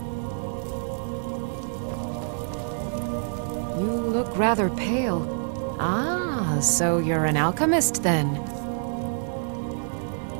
You look rather pale. Ah, so you're an alchemist then.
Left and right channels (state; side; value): silent; left; digital silence